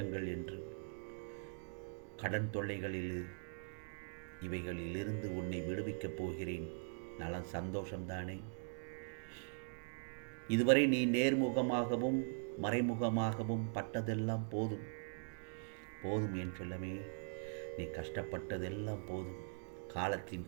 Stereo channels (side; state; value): left; silent; digital silence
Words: என்று. கடன் தொல்லைகளில் இவைகளிலிருந்து உன்னை விடுவிக்கப் போகிறேன். நலம் சந்தோஷம்தானே? இதுவரை நீ நேர்முகமாகவும் மறைமுகமாகவும் பட்டதெல்லாம் போதும். போதும் என் செல்லமே, நீ கஷ்டப்பட்டதெல்லாம் போதும். காலத்தின்